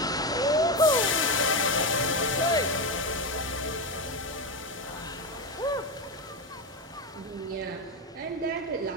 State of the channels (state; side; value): normal; both; correlation 0.13